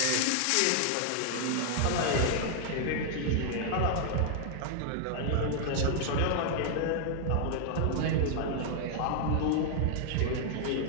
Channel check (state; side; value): different; both; correlation -0.01